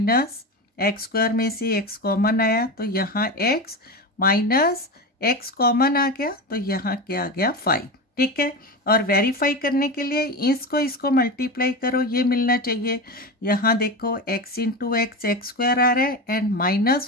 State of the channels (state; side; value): normal; both; correlation 0.22